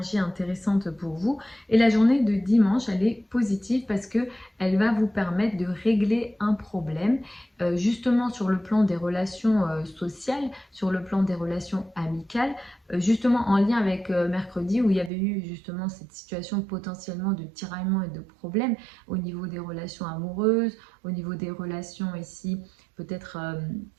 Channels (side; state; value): left; drops out; at 15.1 s